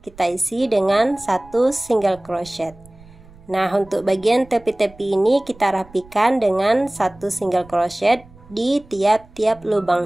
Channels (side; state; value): right; noise; rumble, 24 dB below the sound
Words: isi dengan satu single crochet. Nah, untuk bagian tepi-tepi ini kita rapikan dengan satu single crochet di tiap-tiap